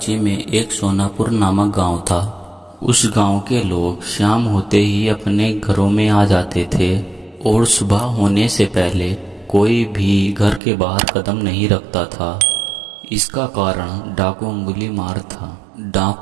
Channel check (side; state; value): left; drops out; at 10.6 s